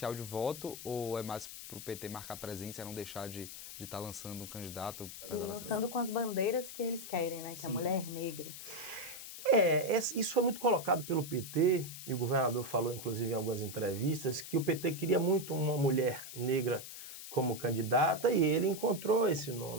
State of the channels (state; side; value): noise; left; hiss, 11 dB below the sound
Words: de voto, ou é mais para o PT marcar presença e não deixar de estar lançando um candidato? Lançando com as bandeiras que eles querem, né? Que Sim. A mulher negra. Isso foi muito colocado pelo PT, e o governador falou, inclusive, em algumas entrevistas, que o PT queria muito uma mulher negra como candidata, e ele encontrou esse